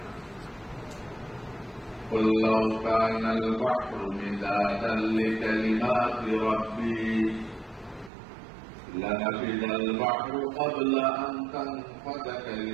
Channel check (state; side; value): drops out; left; at 8.1 s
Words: না। قُلْ لَوْ كَانَ الْبَحْرُ مِدَادًا لِكَلِمَاتِ رَبِّي لَنَفِدَ الْبَحْرُ قَبْلَ أَنْ تَنْفَدَ